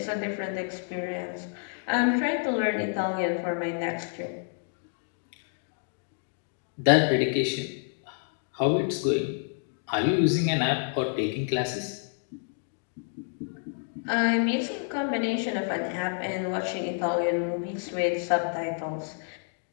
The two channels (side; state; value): right; silent; 59 dB below the other